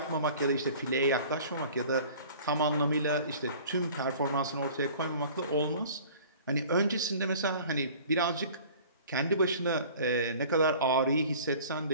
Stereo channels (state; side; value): inverted; both; correlation -0.46